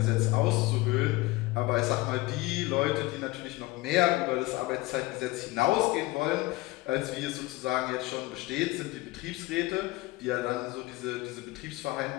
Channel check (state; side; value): quieter; right; 20.1 dB